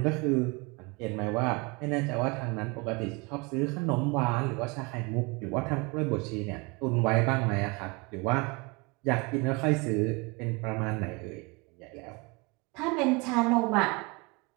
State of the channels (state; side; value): quieter; left; 27.9 dB